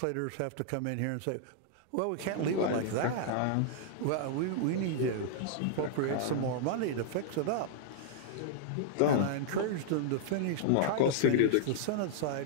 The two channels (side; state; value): both; different; correlation -0.01